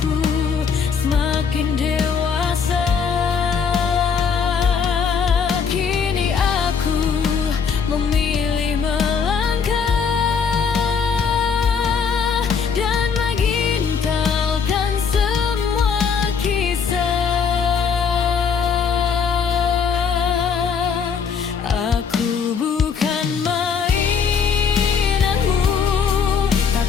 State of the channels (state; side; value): quieter; right; 6.2 dB